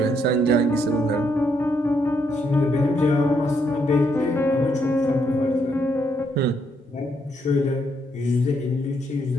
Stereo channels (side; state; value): both; normal; correlation 0.75